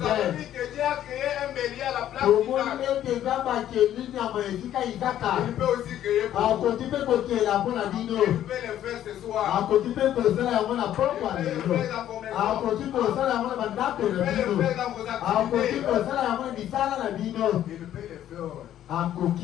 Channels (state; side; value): quieter; right; 11.6 dB